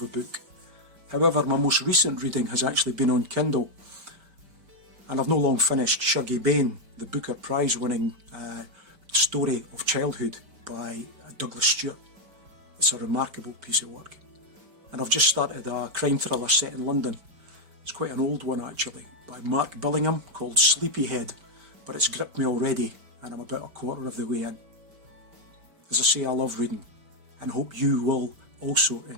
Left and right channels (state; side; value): late; left; 5.1 ms